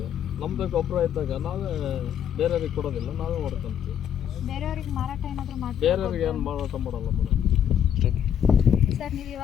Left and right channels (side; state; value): right; quieter; 9.3 dB